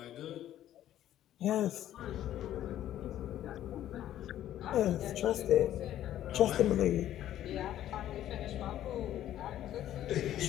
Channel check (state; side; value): quieter; right; 12.2 dB